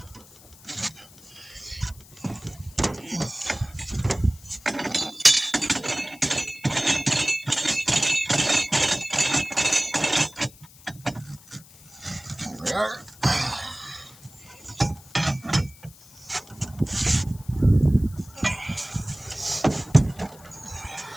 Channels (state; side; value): noise; left; hiss, 23 dB below the sound